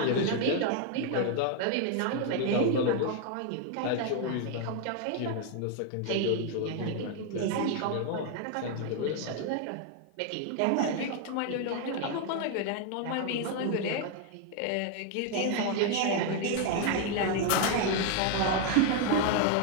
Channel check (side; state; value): both; different; correlation 0.01